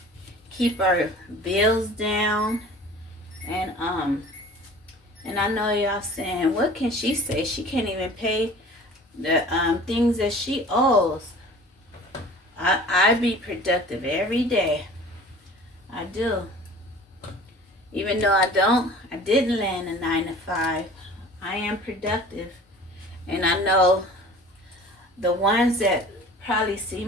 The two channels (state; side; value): normal; both; correlation 0.44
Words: keep our bills down. And I know y'all saying, what can she say? She can't even pay the things that she owes. I be productive every day. I do. Even though I didn't land a 9 to 5. I am productive. And I know the ones that probably see